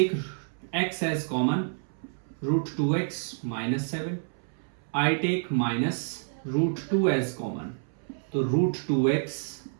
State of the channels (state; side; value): silent; left; 59 dB below the other